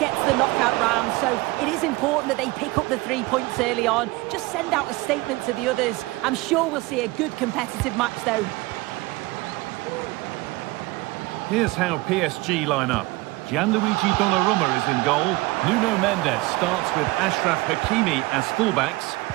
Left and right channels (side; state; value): left; quieter; 21.4 dB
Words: to the knockout round, so it is important that they pick up the 3 points early on. Just send out a statement to the others. I'm sure we'll see a good competitive match, though. Here's how PSG line up. Gianluigi Donnarumma is in goal. Nuno Mendes starts with Achraf Hakimi as fullbacks.